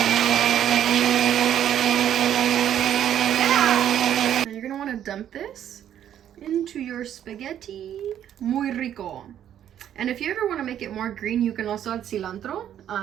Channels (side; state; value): left; quieter; 10.4 dB